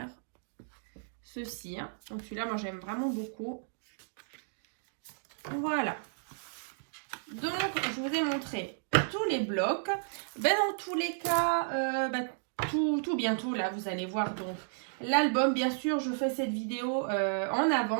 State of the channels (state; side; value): silent; left; digital silence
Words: ceci. Hein. Donc celui-là, moi, j'aime vraiment beaucoup. Voilà. Donc, je vous ai montré tous les blocs. Dans tous les cas, tout bientôt. Là, vous allez voir donc l'album. Bien sûr, je fais cette vidéo en